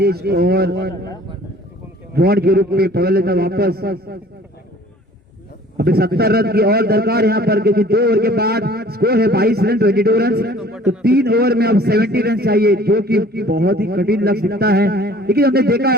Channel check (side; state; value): both; normal; correlation 0.51